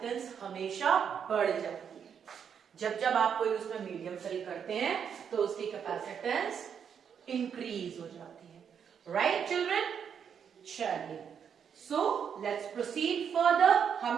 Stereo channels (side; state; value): left; quieter; 7.6 dB